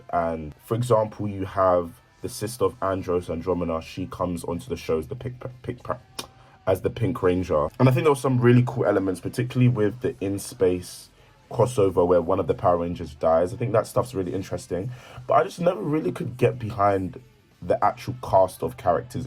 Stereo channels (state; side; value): identical; both; correlation 1.00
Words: And for example, you have the sister of Andros, Andromeda. She comes onto the show as the Pink Ranger. And I think there were some really cool elements, particularly with the In Space crossover where one of the Power Rangers dies. I think that stuff's really interesting. But I just never really could get behind the actual cast of characters